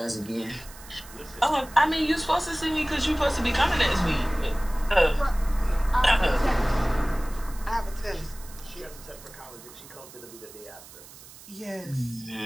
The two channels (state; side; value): noise; right; hiss, 19 dB below the sound